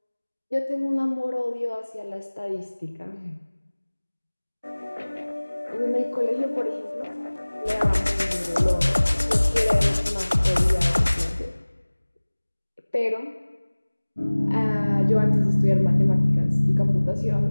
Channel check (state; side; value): inverted; both; correlation -1.00